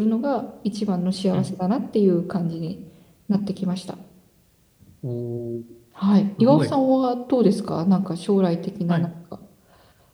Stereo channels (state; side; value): identical; both; correlation 1.00